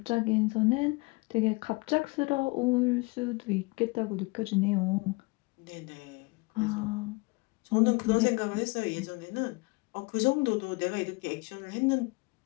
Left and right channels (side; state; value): right; quieter; 26.9 dB